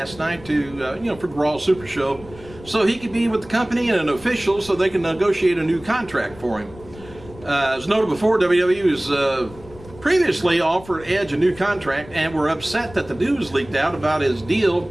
night to, for the Raw Super Show, so he could be with the company and an official so they can negotiate a new contract for him. As noted before, WWE was previously offered Edge a new contract and were upset that the news leaked out about his deal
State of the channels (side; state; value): left; noise; rumble, 19 dB below the sound